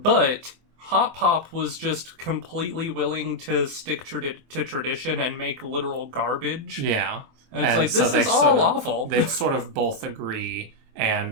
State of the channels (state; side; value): late; left; 24 ms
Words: Hotpop was just completely willing to stick to tradition and make literal garbage. Yeah. And it's like, this is all awful. They sort of both agree,